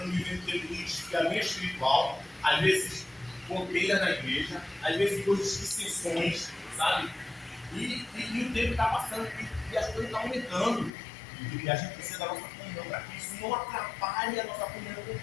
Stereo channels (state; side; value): drops out; right; at 10.9 s